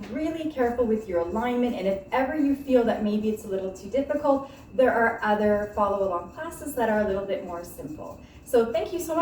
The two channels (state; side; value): identical; both; correlation 1.00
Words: really careful with your alignment, and if ever you feel that maybe it's a little too difficult, there are other follow-along classes that are a little bit more simple. So thank you so